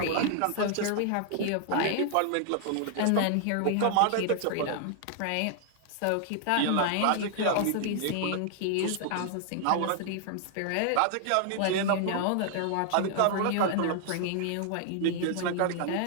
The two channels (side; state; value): both; different; correlation 0.00